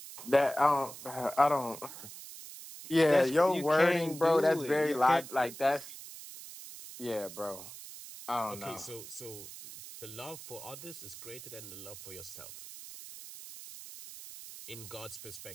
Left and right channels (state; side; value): noise; right; hiss, 13 dB below the sound